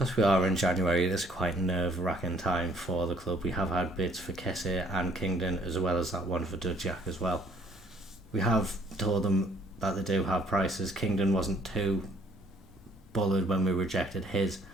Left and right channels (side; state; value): both; normal; correlation 0.62